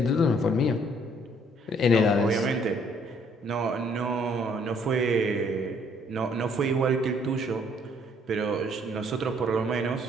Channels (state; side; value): normal; both; correlation 0.64